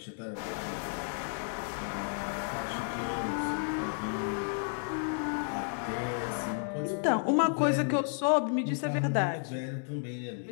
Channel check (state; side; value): silent; right; digital silence